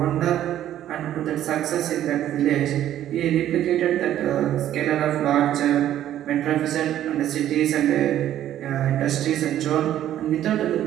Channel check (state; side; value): quieter; left; 11.9 dB